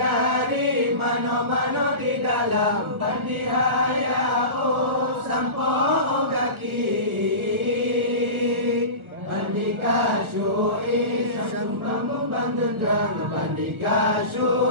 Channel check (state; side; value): late; left; 1.5 ms